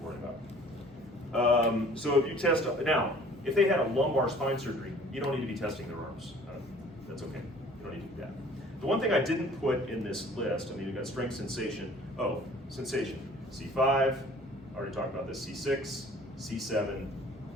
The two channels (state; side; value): normal; both; correlation 0.51